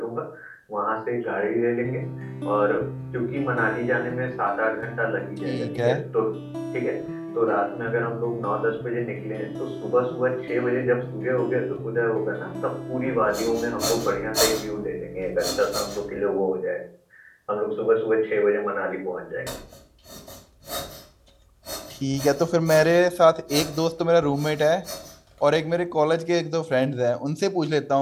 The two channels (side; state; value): both; identical; correlation 1.00